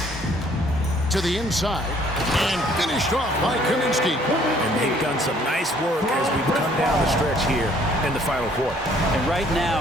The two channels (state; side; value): normal; both; correlation 0.61